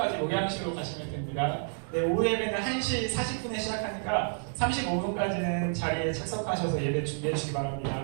목양실로 가시면 됩니다. 네, 오후 예배는 1시 40분에 시작하니까 35분까지는 자리에 착석하셔서 예배 준비해 주시기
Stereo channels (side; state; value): left; silent; digital silence